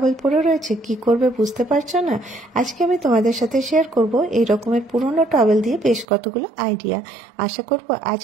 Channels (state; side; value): drops out; left; at 6.1 s